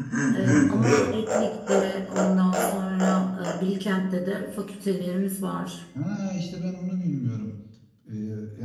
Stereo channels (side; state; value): both; identical; correlation 1.00